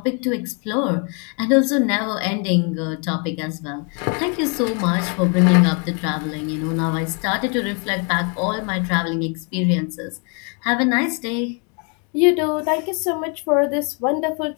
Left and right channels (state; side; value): quieter; right; 36.7 dB